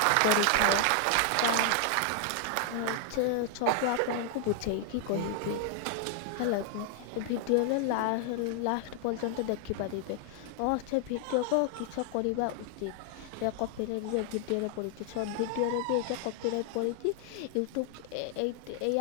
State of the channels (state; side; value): different; both; correlation 0.00